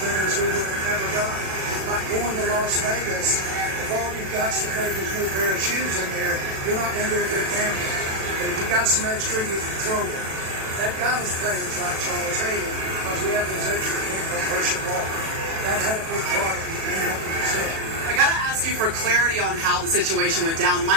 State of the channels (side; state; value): left; late; 37 ms